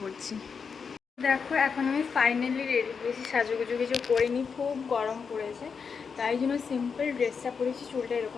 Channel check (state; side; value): quieter; right; 5.9 dB